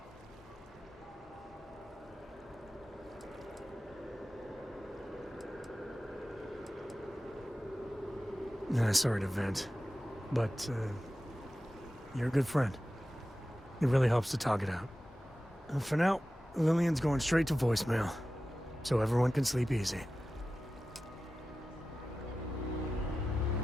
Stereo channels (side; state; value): both; normal; correlation 0.94